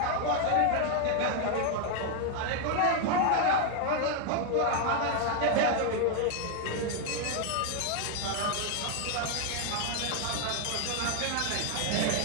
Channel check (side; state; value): both; different; correlation 0.01